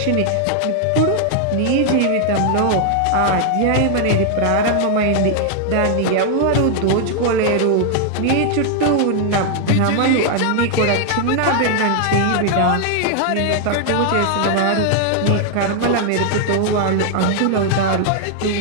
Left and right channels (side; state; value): both; different; correlation 0.00